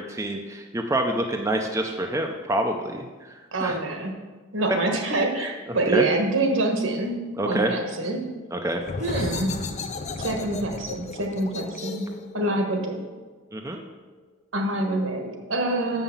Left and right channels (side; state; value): both; normal; correlation 0.25